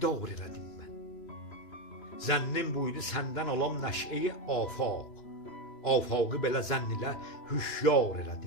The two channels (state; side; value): late; right; 2.9 ms